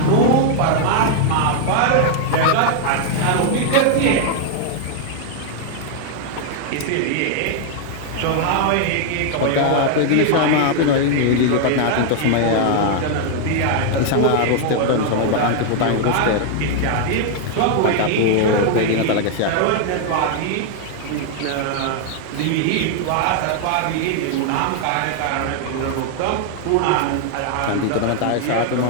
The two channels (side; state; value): both; different; correlation 0.00